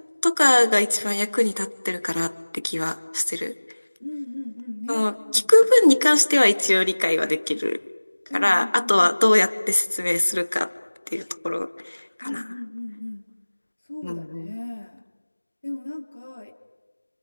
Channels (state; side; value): inverted; both; correlation -1.00